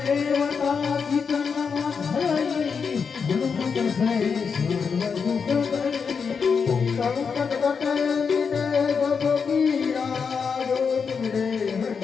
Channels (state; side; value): quieter; right; 5.9 dB